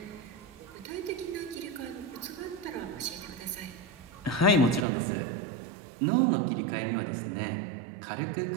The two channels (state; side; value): drops out; left; at 4.9 s